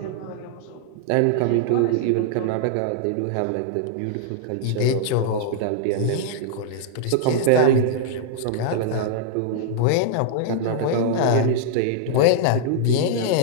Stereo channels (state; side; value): different; both; correlation -0.01